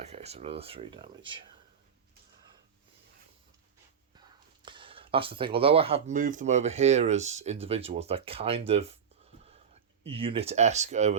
so another 3 damage. That's the thing. Although I have moved them over here as individuals, they're kind of unit-esque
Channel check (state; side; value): quieter; left; 7.3 dB